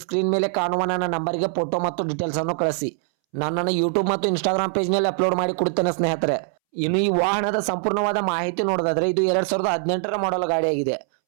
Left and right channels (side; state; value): left; silent; 64 dB below the other